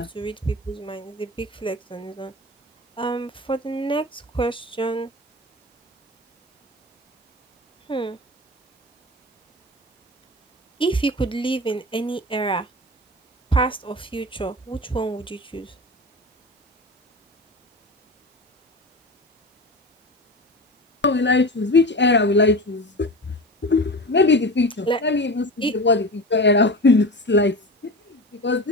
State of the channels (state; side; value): normal; both; correlation 0.29